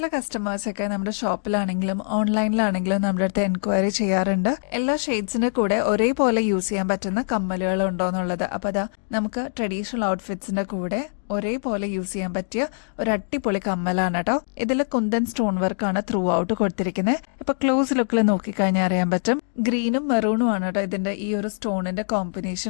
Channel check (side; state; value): right; silent; digital silence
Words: കസ്റ്റമേഴ്സൊക്കെ നമ്മുടെ ഷോപ്പിലാണെങ്കിലും ഓൺലൈനിലാണെങ്കിലും നമ്മുടെ അടുത്ത് എൻക്വയറി ചെയ്യാറുണ്ട്, എല്ലാ ഷെയ്ഡ്സിന്റെ കൂടെ ഒരേപോലെ യൂസ് ചെയ്യാൻ പറ്റുന്ന കമ്മലുകൾ ഉണ്ടോ എന്നുള്ളത്. അപ്പൊ അതാ നമുക്ക് ട്രഡീഷണൽ ഔട്ട്ഫിറ്റ്സിന്റെ കൂടെ ഒരേപോലെ യൂസ് ചെയ്യാൻ പറ്റിയ ഒരു അടിപൊളി കമ്മലാണ് കേട്ടോ. ഇതിൽ കുന്തൻ സ്റ്റോൺ വർക്കാണ് ത്രൂ ഔട്ട് കൊടുത്തിരിക്കുന്നത്. ഇപ്പൊ ക്ലോസ് ലുക്കിൽ നോക്കിക്കഴിഞ്ഞാൽ അറിയാൻ പറ്റും. ഗ്രീനും മെറൂണും ആണ് കേട്ടോ ഇതിന്റെ ഈ ഒരു സ്റ്റോണിന്റെ